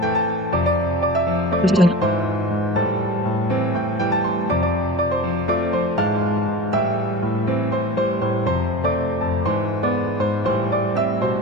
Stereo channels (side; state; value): both; normal; correlation 0.31